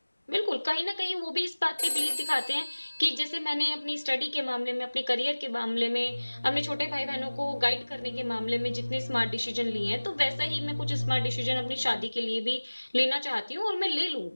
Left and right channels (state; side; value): inverted; both; correlation -1.00